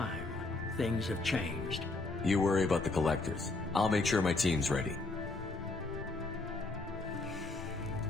Things have changed. You worry about the Collectors. I'll make sure my team's ready.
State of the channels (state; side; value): quieter; right; 3.3 dB